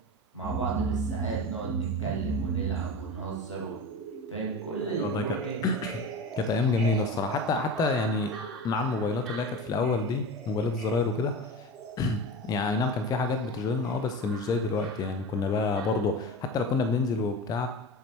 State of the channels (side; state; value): both; normal; correlation 0.29